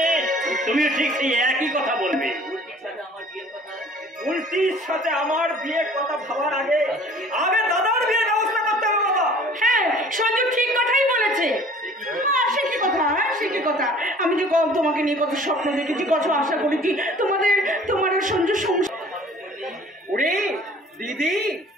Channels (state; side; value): normal; both; correlation 0.50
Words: তুমি ঠিক সেই একই কথা বলবে। উল্টির সাথে আমার বিয়ের কথা ভাবার আগে দাদার বিয়ের ব্যবস্থা করতে হবে বাবা। হ্যাঁ, সঞ্জু ঠিক কথাই বলেছে। সে কি কথা, সে কি কথা। আমি যে তোমাকে নিয়ে কত স্বপ্ন দেখেছি, কত আশা করেছি, তোমার সঞ্জু সংসার। ওরে দিদি,